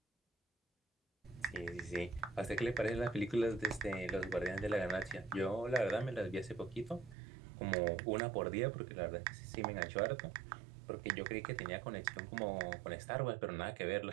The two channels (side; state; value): left; drops out; at 7.2 s